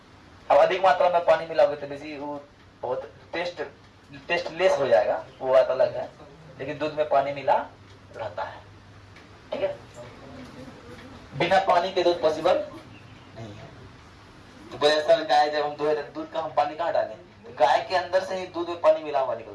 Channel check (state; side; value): identical; both; correlation 1.00